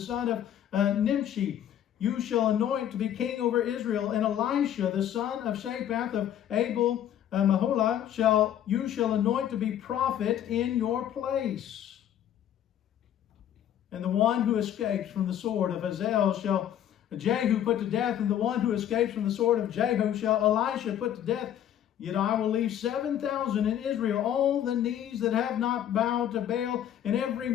of Nimshi, you shall anoint to be king over Israel, and Elisha, the son of Shaphat of Abel Maholah, you shall anoint to be prophet in your place. And the one who escapes from the sword of Hazael shall Jehu put to death, and the one who escapes from the sword of Jehu shall Elisha put to death. Yet I will leave 7,000 in Israel, all the knees that have not bowed to Baal, and every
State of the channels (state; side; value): quieter; right; 10.6 dB